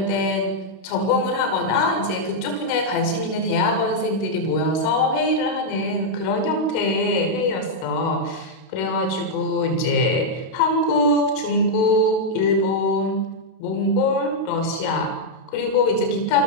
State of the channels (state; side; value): late; right; 32 ms